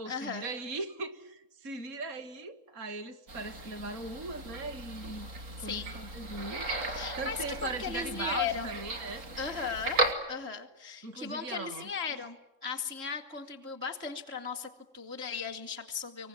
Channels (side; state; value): left; late; 3.7 ms